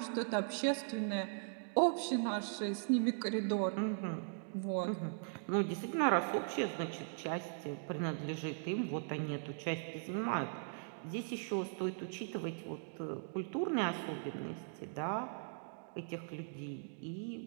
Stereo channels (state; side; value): silent; left; digital silence